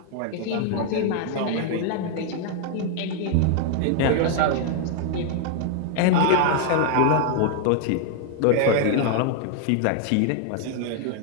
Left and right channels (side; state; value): both; different; correlation 0.00